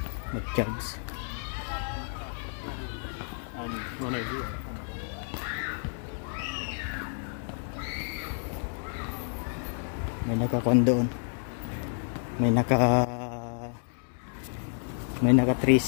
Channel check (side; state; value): right; silent; 58 dB below the other